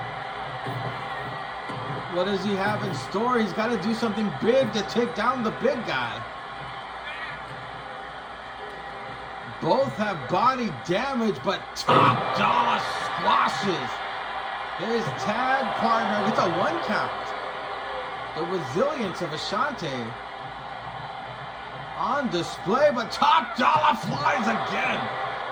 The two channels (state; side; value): identical; both; correlation 1.00